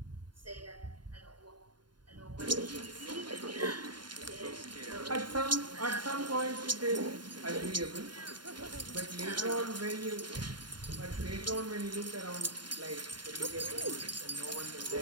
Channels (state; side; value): late; left; 0.71 ms